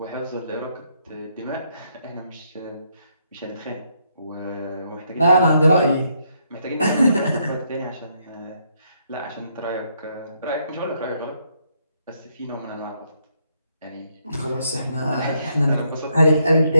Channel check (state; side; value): inverted; both; correlation -0.75